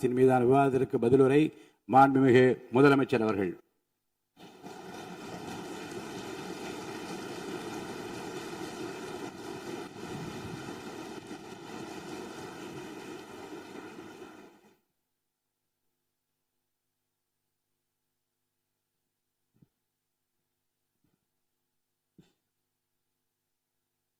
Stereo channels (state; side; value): identical; both; correlation 1.00